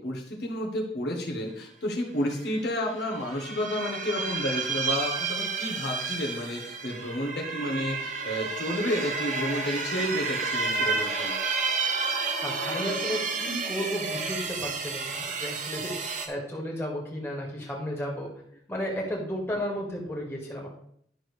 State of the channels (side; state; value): both; normal; correlation 0.41